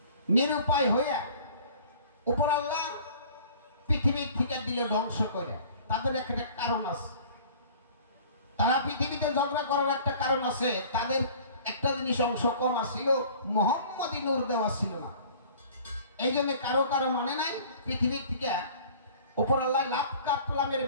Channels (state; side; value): inverted; both; correlation -0.48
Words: নিরুপায় হইয়া উপর আল্লাহ পৃথিবীর থেকে দিল ধ্বংস করে। তাদের একটা কারণ আছে, তারা পৃথিবীতে ঝগড়া করার একটা কারণ আছে। তাদের একটা জিনিস অংশ কম আসছিল, মোহাম্মদী নূর দেওয়া ছিল না। এই জন্য কারো মানে নাই। পৃথিবীর থেকে উপর আল্লাহ লাভ কাপলামের